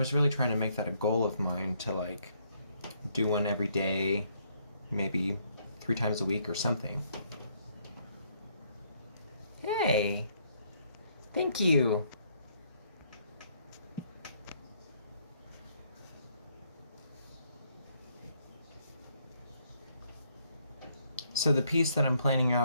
really trying to make that a goal of mine to like do one every day, maybe 3 times a week or something. Hey, thank you. So the piece that I'm planning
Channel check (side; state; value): both; inverted; correlation -0.70